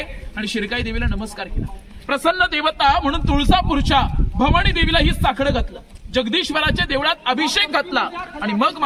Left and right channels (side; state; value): both; identical; correlation 1.00